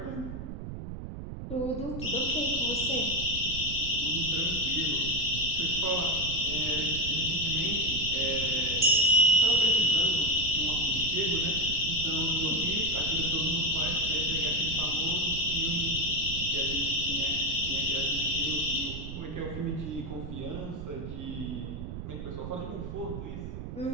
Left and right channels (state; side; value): noise; right; rumble, 8 dB below the sound